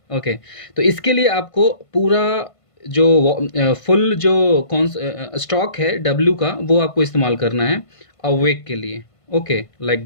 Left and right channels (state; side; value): late; right; 1.5 ms